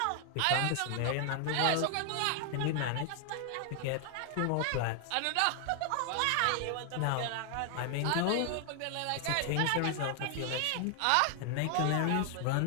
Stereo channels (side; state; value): both; different; correlation 0.00